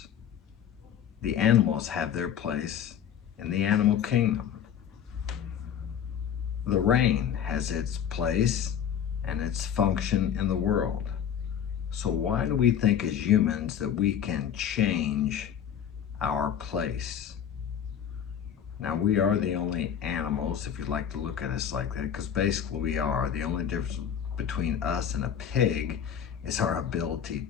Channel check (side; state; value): right; quieter; 9.0 dB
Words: The animals have their place in the animal kingdom. The rain has its place and its function in the world. So why do we think as humans that we can change our place? Now, we are the only animals, if you'd like to look at us like that, because basically we are. The only difference between us and a pig is our ability